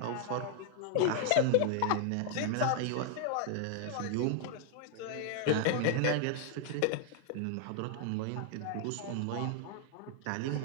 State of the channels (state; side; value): different; both; correlation 0.00